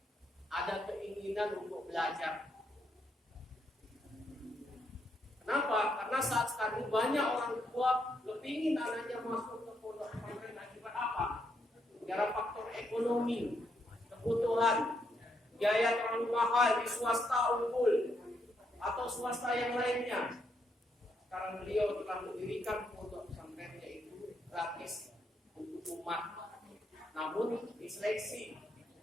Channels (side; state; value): both; normal; correlation 0.77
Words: ada keinginan untuk belajar. Kenapa? Karena saat sekarang banyak orang tua kepingin anaknya masuk ke pondok pesantren akibat apa? Gara faktor ekonomi, kebutuhan, biaya terlalu mahal di swasta unggul atau swasta yang lainnya. Sekarang beliau telah mendirikan pondok pesantrennya itu gratis untuk umat. Namun diseleksi